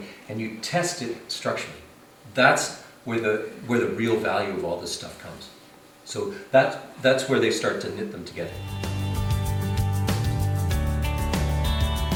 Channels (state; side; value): identical; both; correlation 1.00